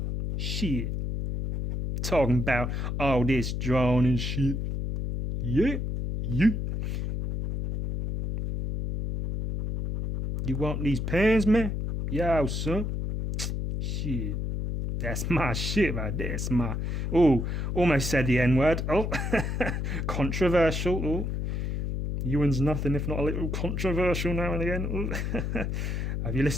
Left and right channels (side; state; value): left; noise; hum, 2 dB below the sound